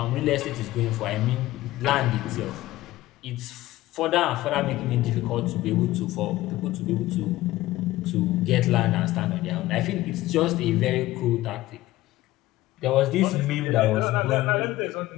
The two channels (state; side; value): quieter; right; 16.7 dB